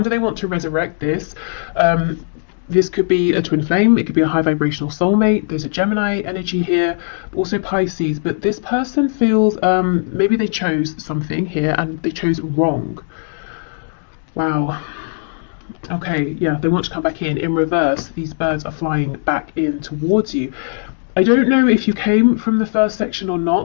they want to resurrect this. This could be a twin flame. It could be a high vibrational soulmate. There's a Gemini energy here, also Pisces. But this person feels maybe they chose something here and they chose wrong. Wow. Okay, yeah, they want to come back in. In reverse, these birds are flying back in towards you. I don't know if you came from the first section or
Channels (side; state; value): right; silent; digital silence